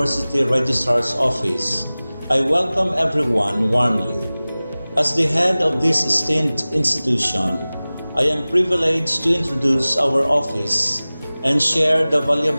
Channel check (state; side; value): inverted; both; correlation -0.98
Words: Registrar's Office, I welcome everyone warmly. As the head of this esteemed institution, I am privileged to introduce our office and share the